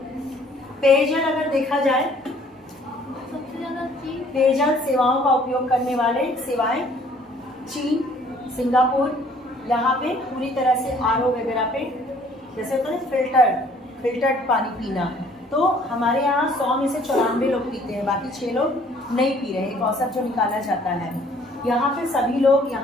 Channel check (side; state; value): both; normal; correlation 0.58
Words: पेयजल अगर देखा जाए, सबसे ज्यादा पेयजल सेवाओं का उपयोग करने वाले सेवाएं चीन, सिंगापुर, यहाँ पे पूरी तरह से आरओ वगैरह पे, जैसे होता है फिल्टर्ड पानी पीना, तो हमारे यहाँ 100 में से 94 लोग पीते हैं, बाकी 6 लोग नहीं पी रहे। एक औसत जो निकाला जाता है। यहाँ पे सभी